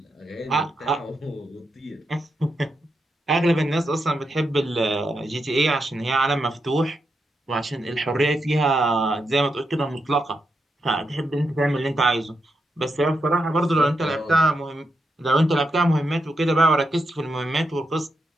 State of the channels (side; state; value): both; normal; correlation 0.84